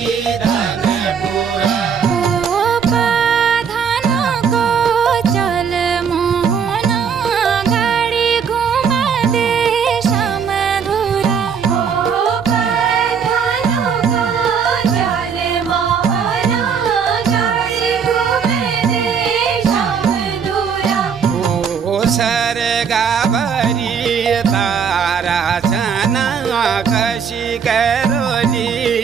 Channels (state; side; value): quieter; left; 6.8 dB